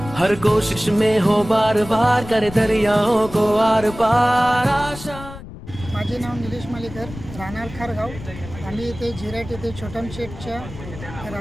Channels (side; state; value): left; noise; rumble, 14 dB below the sound